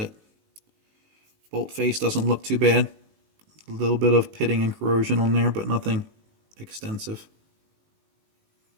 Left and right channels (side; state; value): left; late; 19 ms